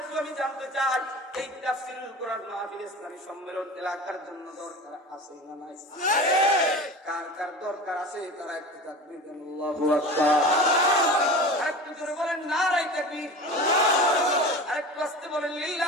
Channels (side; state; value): both; normal; correlation 0.33